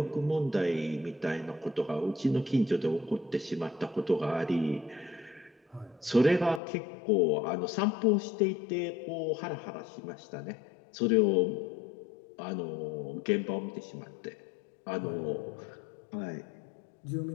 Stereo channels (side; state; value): right; drops out; at 6.6 s